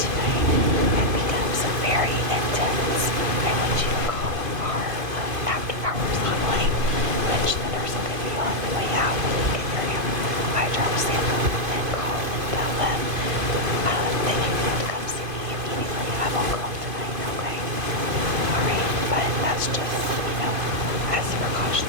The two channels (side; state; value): left; late; 2.5 ms